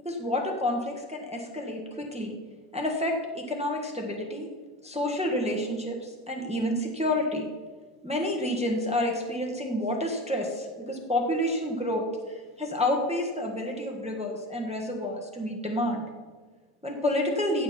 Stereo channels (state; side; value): normal; both; correlation 0.31